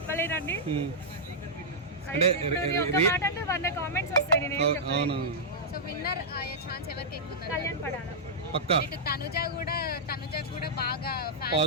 అంటే ఒక మాట అంటే 100 కామెంట్స్ వస్తాయి. నేను ఏం చెప్పలేను. సో విన్నర్ అయ్యే ఛాన్స్ ఎవరికి ఎక్కువ ఉంది? కళ్యాణ్ పడాల పక్కా. తనుజ కూడా బాగా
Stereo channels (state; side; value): normal; both; correlation -0.11